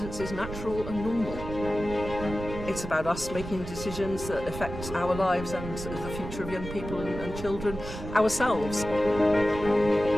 is natural and normal. It's about us making decisions that affect our lives and the future of young people and children, ourselves.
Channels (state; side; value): noise; right; rumble, 9 dB below the sound